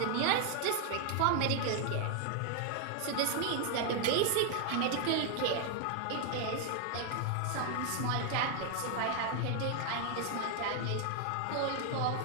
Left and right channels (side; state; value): both; different; correlation 0.00